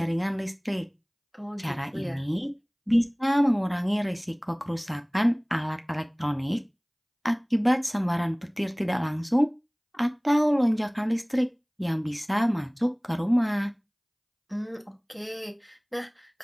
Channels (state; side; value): identical; both; correlation 1.00